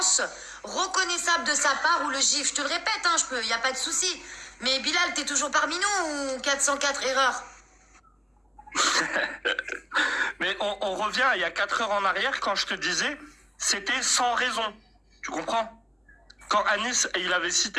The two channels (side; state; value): both; identical; correlation 1.00